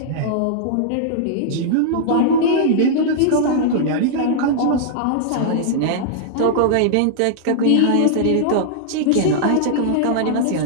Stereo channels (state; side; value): different; both; correlation -0.01